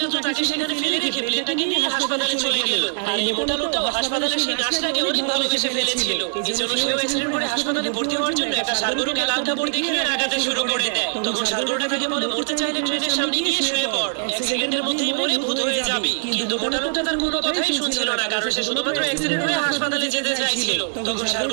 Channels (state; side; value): silent; left; 64 dB below the other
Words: তো তাকে সেখানে ফেলে রেখে প্লেনটাকে নিয়ে হাসপাতালে চলে গেল। আর এই মোটা লোকটাও হাসপাতালে সেই নার্সটাকে অনেক ভালোবেসে ফেলেছিল, এই জন্য সেও অ্যাক্সিডেন্ট করে হাসপাতালে ভর্তি হওয়ার জন্য একটা সারগরুকে লাল কাপড় দেখিয়ে রাগাতে শুরু করে দেয়। তখন সারগরুটা তাকে বলে, মরতে চাইলে ট্রেনের সামনে গিয়ে শুয়ে পড়, 1 সেকেন্ডের মধ্যেই মরে ভূত হয়ে যাবি। কিন্তু মোটা লোকটা তার কোনো কথাই শুনছিল না, কারণ সে শুধুমাত্র অ্যাক্সিডেন্ট হয়ে হাসপাতালে যেতে চাইছিল। তখন